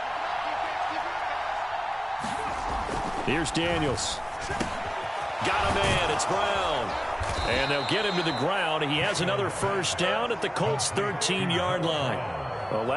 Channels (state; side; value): identical; both; correlation 1.00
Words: Here's Daniels. Got a man. It's Brown. And they'll get him to the ground. He has another first down at the Colts' 13-yard line.